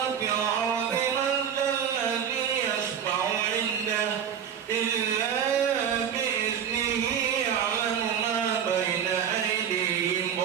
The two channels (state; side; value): quieter; left; 8.3 dB